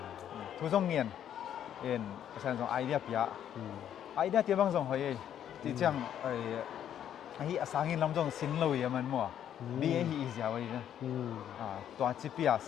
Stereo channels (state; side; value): quieter; right; 10.0 dB